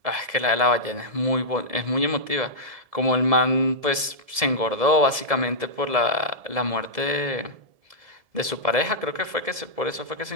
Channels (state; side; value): late; left; 1.7 ms